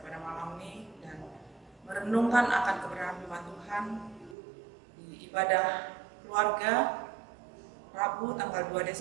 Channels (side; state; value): left; drops out; at 4.4 s